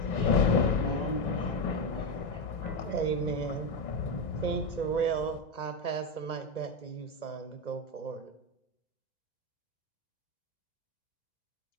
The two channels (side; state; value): right; late; 2.0 ms